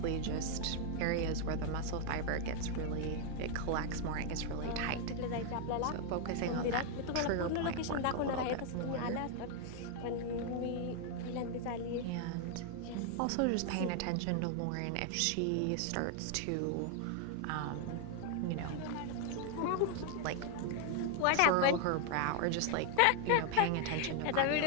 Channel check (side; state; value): both; different; correlation 0.00